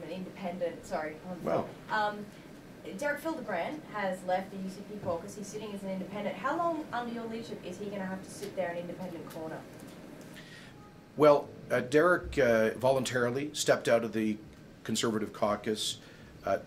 an independent, Well. Derek Fildebrand has left the UCP caucus. He's sitting as an independent. How long under your leadership is he going to have to sit there in independent corner? Well, Derek voluntarily stepped out of the Conservative caucus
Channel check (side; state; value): both; identical; correlation 1.00